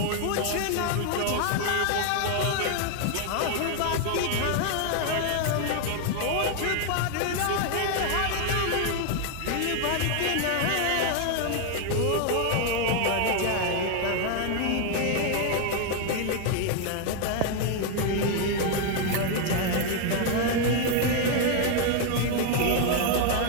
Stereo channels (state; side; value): different; both; correlation 0.00